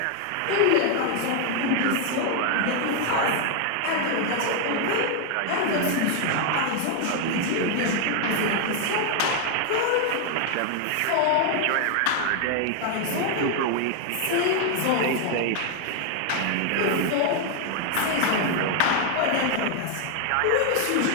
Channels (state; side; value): different; both; correlation 0.00